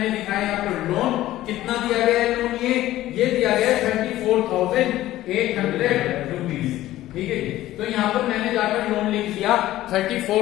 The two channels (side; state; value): right; quieter; 15.0 dB